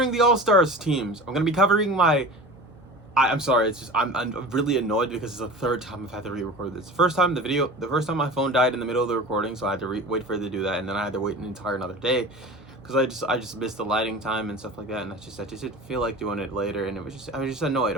the All-Stars teams. I'm going to be covering I'm sorry, it's just I'm really annoyed because it's the third time I've had to re-record this. The first time my phone died in the middle of the recording, so I had to wait for it to do that, and then I had to wait an entire another day because I just missed the lighting time and stuff like that, and I just didn't feel like doing it later, and I was just annoyed.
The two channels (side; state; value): both; normal; correlation 0.36